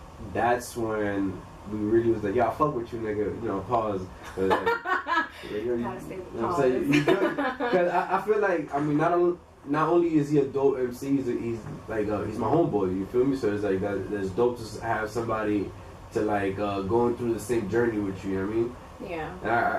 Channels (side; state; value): both; identical; correlation 1.00